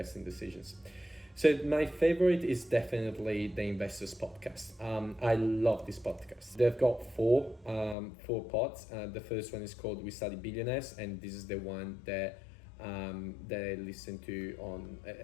decisions. So my favorite is definitely the Investors Podcast. I love this podcast. They've got four pods. The first one is called We Study Billionaires, and this is the one that I listen to on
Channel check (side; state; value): right; drops out; at 8.0 s